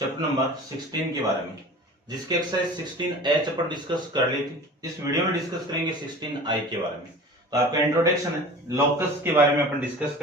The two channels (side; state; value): both; normal; correlation 0.39